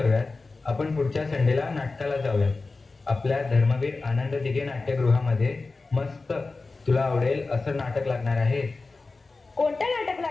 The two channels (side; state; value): right; quieter; 3.7 dB